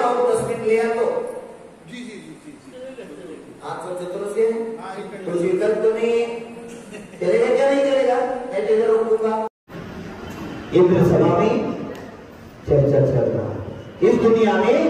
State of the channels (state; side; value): identical; both; correlation 1.00